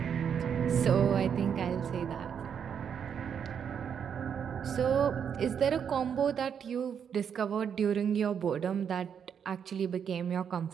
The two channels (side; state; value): left; quieter; 7.7 dB